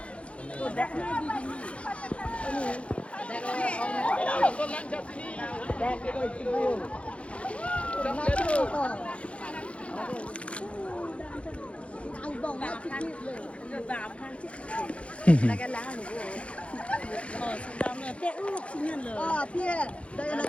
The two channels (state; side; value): late; right; 0.061 ms